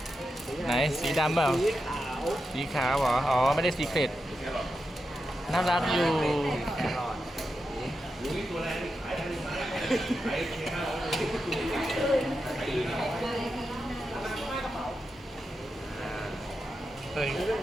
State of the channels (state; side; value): normal; both; correlation 0.88